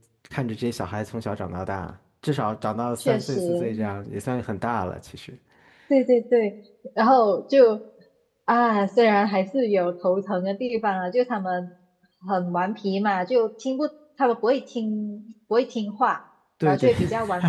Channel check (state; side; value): identical; both; correlation 1.00